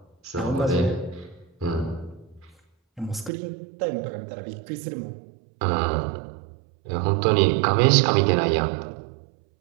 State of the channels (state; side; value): drops out; left; at 3.3 s